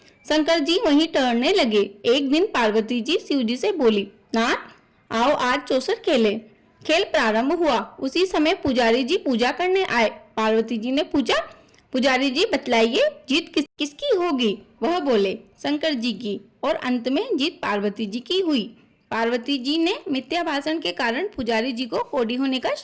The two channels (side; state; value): both; identical; correlation 1.00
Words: शंकर जी वहीं टहलने लगे। एक दिन पार्वती जी शिव जी से बोली, नाथ आओ आज चौसर खेले। खेल प्रारंभ हुआ। उसी समय पुजारी जी पूजा करने आए। पार्वती जी ने पूछा, पुजारी जी बतलाइए जीत किसकी होगी? वह बोले, शंकर जी की। और अंत में जीत पार्वती जी की हुई। पार्वती जी ने मिथ्या भाषण के कारण पुजारी जी को कोढ़ी होने का